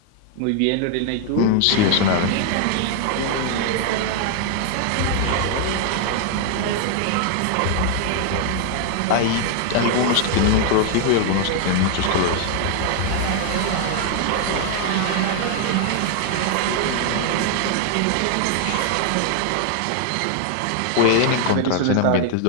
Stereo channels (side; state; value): both; different; correlation 0.00